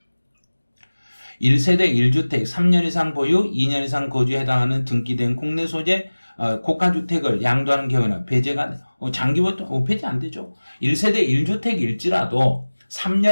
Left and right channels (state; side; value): inverted; both; correlation -1.00